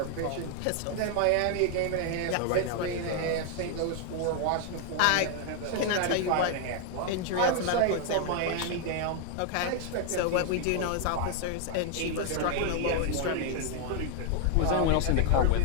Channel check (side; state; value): both; different; correlation 0.00